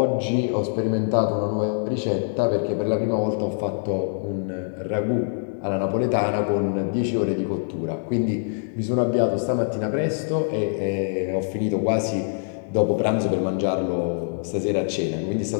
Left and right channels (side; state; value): right; silent; digital silence